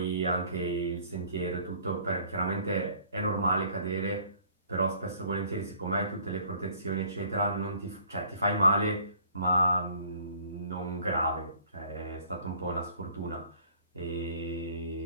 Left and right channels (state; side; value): inverted; both; correlation -0.55